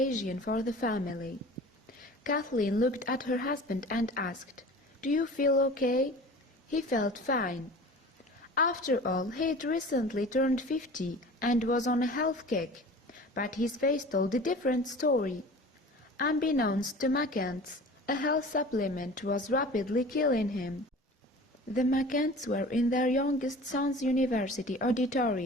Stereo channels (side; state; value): both; normal; correlation 0.40